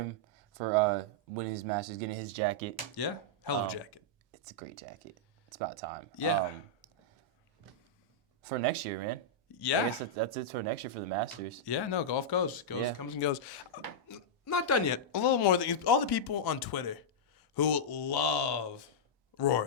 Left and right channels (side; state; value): both; normal; correlation -0.08